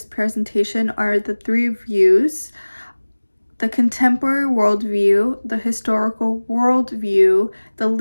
presentation are the three views: the contemporary worldview, the historical worldview, the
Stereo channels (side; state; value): both; inverted; correlation -1.00